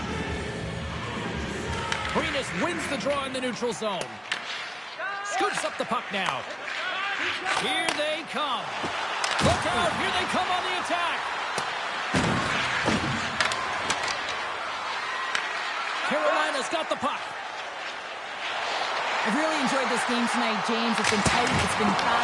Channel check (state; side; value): identical; both; correlation 1.00